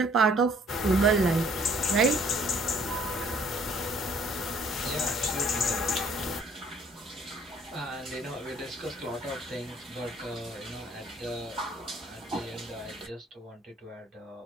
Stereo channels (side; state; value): both; normal; correlation 0.59